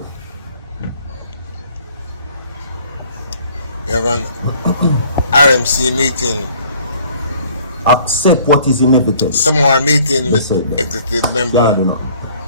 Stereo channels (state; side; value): inverted; both; correlation -0.56